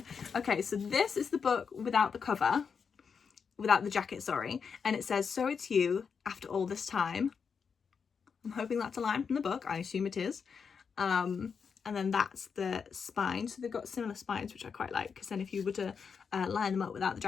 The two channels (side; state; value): right; quieter; 6.1 dB